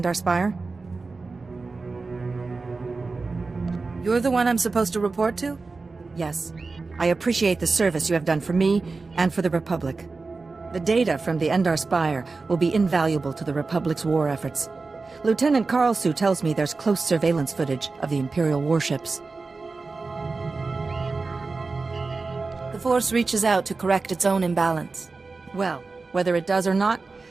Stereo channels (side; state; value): left; quieter; 3.9 dB